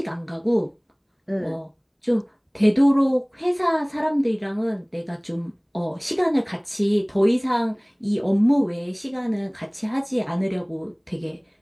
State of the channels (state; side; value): identical; both; correlation 1.00